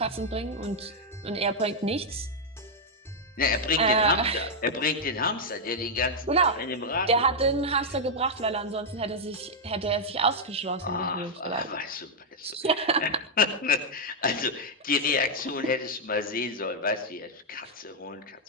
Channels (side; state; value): both; normal; correlation -0.02